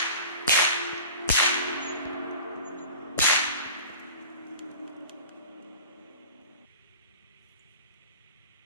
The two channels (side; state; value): both; inverted; correlation -0.41